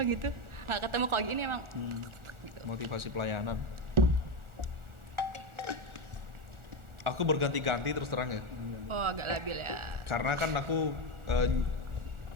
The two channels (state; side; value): late; left; 1.4 ms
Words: gitu. Nggak ketemu kalau gini emang. Motivasi pelayanan. Aku berganti-ganti terus terang ya. Oh agak labil ya. Karena kan aku